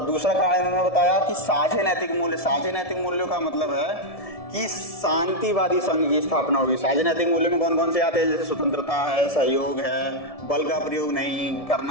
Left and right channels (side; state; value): right; late; 1.7 ms